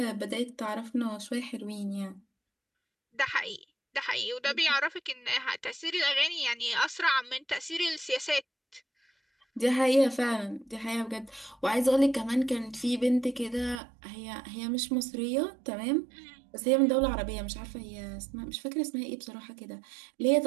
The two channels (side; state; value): left; drops out; at 13.8 s